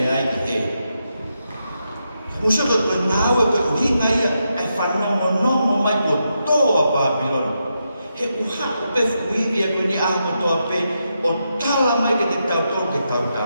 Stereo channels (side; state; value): both; inverted; correlation -0.84